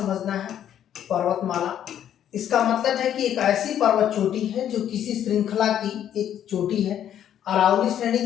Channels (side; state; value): right; quieter; 10.3 dB